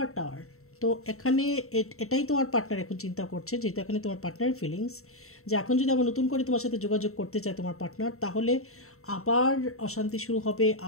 টাওয়ার। তো এখানে এটাই তোমার পার্টনার এখন চিন্তা করছে, যেহেতু এখানে তোমার পার্টনারের ফিলিংস, যে এখন যদি আবার নতুন করে তোমার সাথে যোগাযোগ করতে চায় তোমার পার্টনার, তাহলে আবার অশান্তি শুরু হবে,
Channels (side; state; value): right; late; 0.63 ms